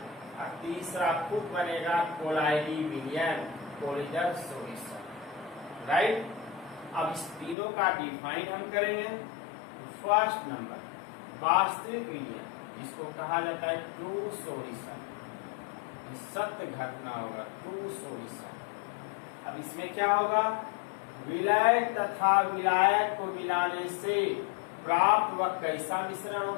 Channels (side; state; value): right; drops out; at 7.6 s